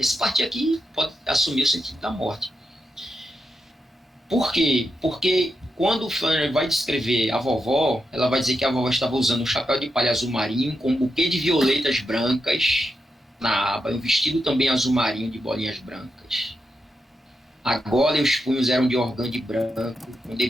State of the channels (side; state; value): both; normal; correlation 0.86